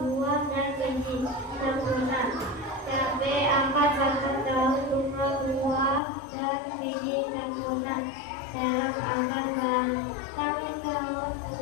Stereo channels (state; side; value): drops out; right; at 6.0 s